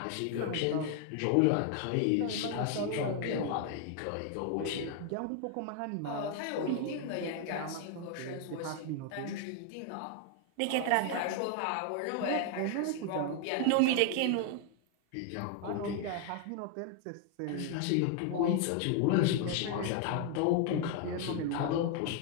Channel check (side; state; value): both; different; correlation 0.00